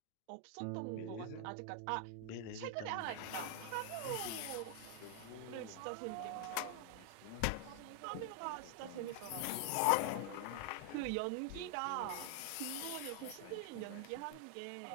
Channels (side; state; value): both; different; correlation 0.00